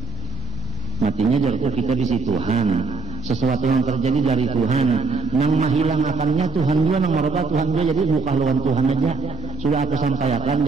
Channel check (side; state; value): left; quieter; 4.9 dB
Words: Matinya jatuh kita di situ Tuhan. Sesuatu yang terjadi dari Tuhan. Yang menghilang akannya Tuhan dia, yang merubah Tuhan dia. Jadi bukan lawan Tuhan aja. Sudah aku sampaikan,